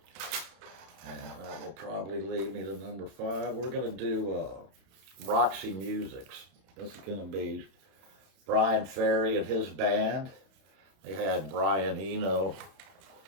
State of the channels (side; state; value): left; late; 31 ms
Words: And that will probably lead me to #5. We're going to do Roxy Musics. This is going to be Brian Ferry and his band. They had Brian Eno